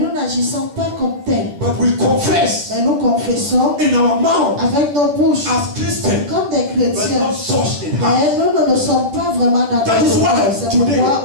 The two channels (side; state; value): left; late; 10 ms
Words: n'agissons pas comme tels. But we confess Mais nous confessons in our mouth avec nos bouches as Christians, comme des but chrétiens. not such in heart. Mais nous ne sommes pas vraiment dans That is notre why cœur. C'est today pourquoi